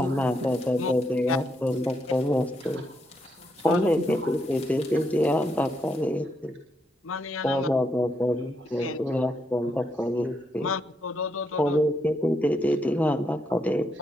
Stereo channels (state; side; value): normal; both; correlation 0.79